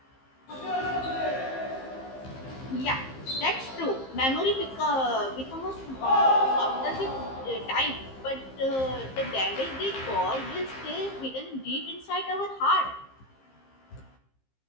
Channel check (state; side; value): late; right; 15 ms